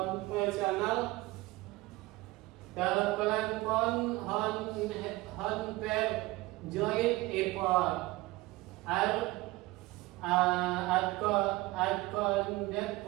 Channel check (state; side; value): quieter; left; 20.1 dB